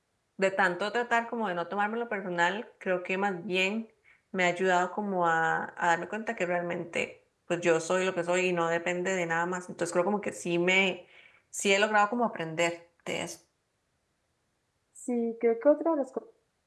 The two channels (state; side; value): identical; both; correlation 1.00